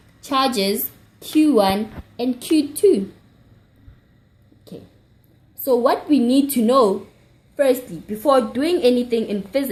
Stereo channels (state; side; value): identical; both; correlation 1.00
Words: charges Q1 and Q2. Okay. So what we need to know firstly, before doing anything in